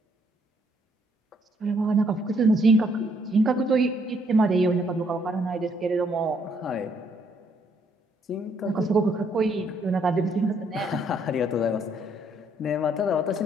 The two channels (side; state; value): both; normal; correlation 0.69